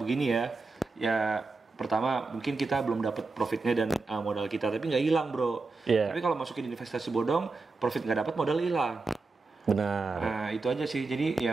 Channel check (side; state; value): left; quieter; 3.8 dB